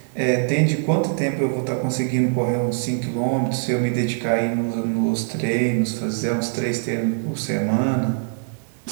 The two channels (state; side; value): silent; left; digital silence